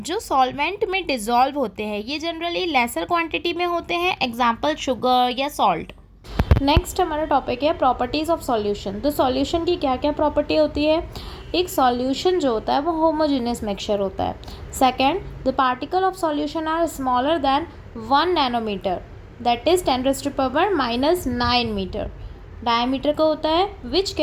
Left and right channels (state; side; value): identical; both; correlation 1.00